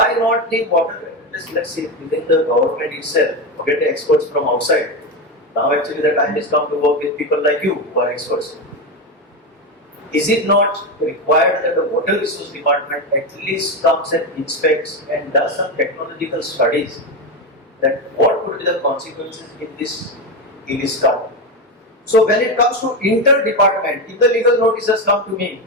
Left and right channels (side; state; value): both; normal; correlation 0.14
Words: not the water? Let's see, within the government itself, forget the experts from outside. Now, actually, the time has come to work with people like you who are experts. Is it not required that the water resource department at least comes and inspects and does some technological studies that what could be the consequences in this town? So when it comes to inter-department, if the legal notices come to me